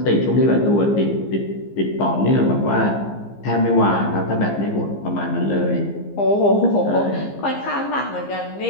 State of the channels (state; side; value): late; right; 15 ms